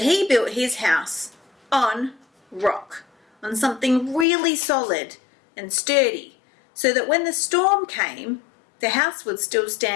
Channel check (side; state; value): right; drops out; at 4.2 s